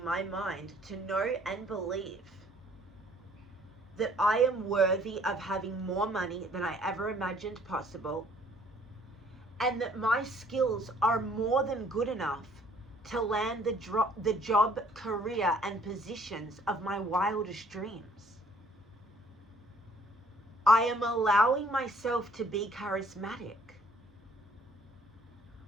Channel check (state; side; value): normal; both; correlation 0.60